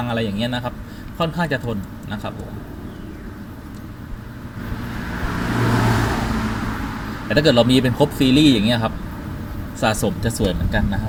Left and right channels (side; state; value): both; identical; correlation 1.00